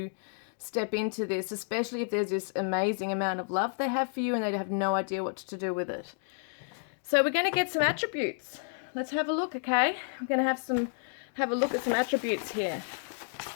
step into this, especially if there's this amazing amount of love they have for you and they have no idea what to do with it. So we're going to get some attributes. Let's have a look, okay? I'm going to have a look at some attributes here.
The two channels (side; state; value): right; silent; digital silence